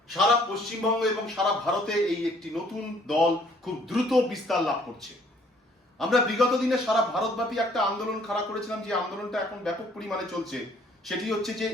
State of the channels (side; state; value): both; normal; correlation 0.61